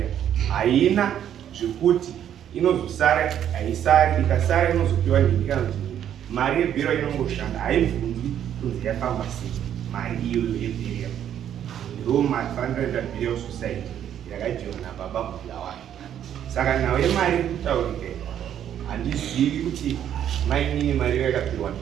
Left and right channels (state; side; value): quieter; left; 10.0 dB